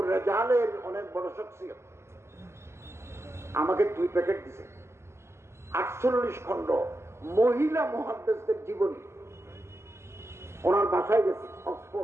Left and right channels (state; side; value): late; left; 0.13 ms